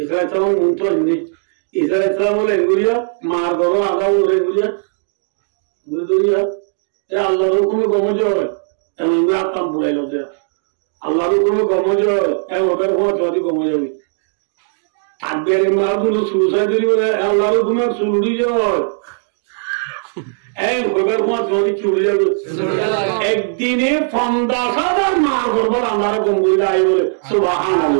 ইসলাম মন্ত্র হিন্দি ঈসা ইসলাম বলে এগুলিয়া মার গর্ব আগা বলে এগুলিয়া বুঝলিয়া এ আল্লাহর হুকুমে গমজ হয় এমন আপনার বুড়াইল যে আল্লাহর হুকুমে গমজ হয় এমন ওটার সময় যদি গমজ হবে থাকবে মাগুলো সুসাইড বলে আল্লাহর হুকুমে চুরি হয় এই ওটার সময় যদি চুরি যাবে একদিনে 50,000 মার করবো আল্লাহর গম্ভীর আই বলে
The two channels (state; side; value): silent; left; digital silence